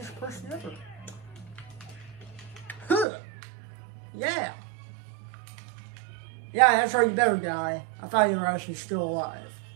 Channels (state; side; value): drops out; left; at 3.1 s